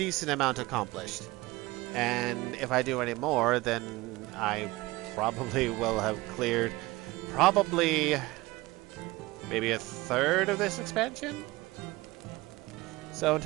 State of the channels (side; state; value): left; quieter; 20.6 dB